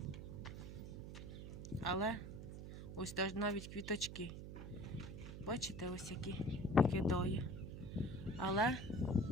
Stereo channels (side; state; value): right; noise; hum, 9 dB below the sound